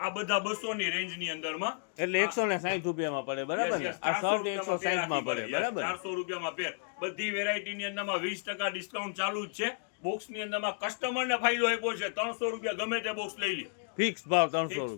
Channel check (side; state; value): right; silent; digital silence